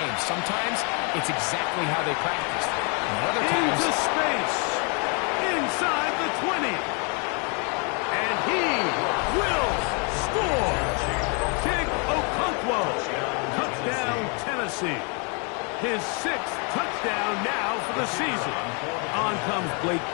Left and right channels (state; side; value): quieter; right; 35.6 dB